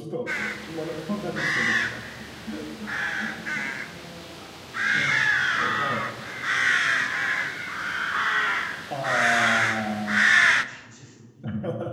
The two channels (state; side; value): identical; both; correlation 1.00